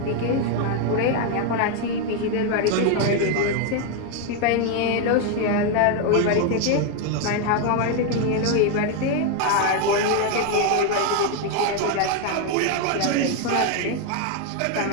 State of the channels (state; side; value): different; both; correlation 0.01